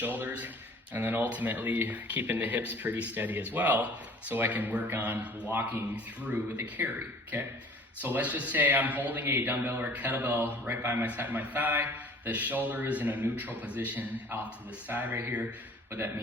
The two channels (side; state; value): both; normal; correlation 0.49